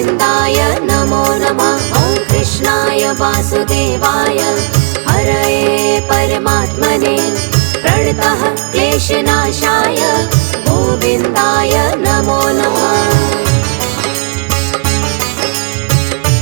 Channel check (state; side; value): quieter; left; 33.0 dB